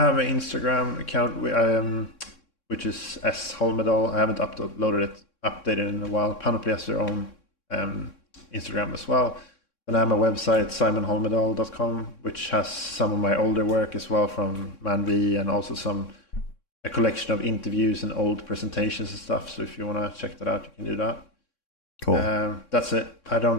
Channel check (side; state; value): right; late; 3.6 ms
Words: an Instagram account which is S Holmedal. I haven't updated in a while. Panoply has their own Instagram as well. And I have my website, simonholmedal.com, which has some of my older work as well from ManV, and also a collection of interviews and old presentations and stuff. So if you want to check that out, you can do that. Cool. That's it. I